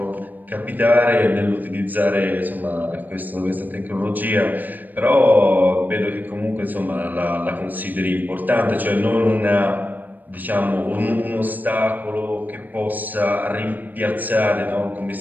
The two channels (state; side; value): late; left; 0.086 ms